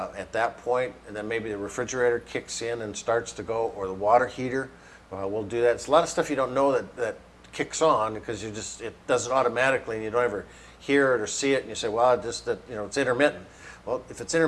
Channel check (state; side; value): identical; both; correlation 1.00